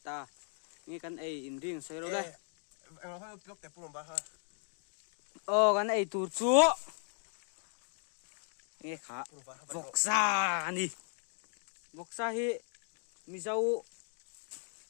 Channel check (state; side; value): silent; right; 53 dB below the other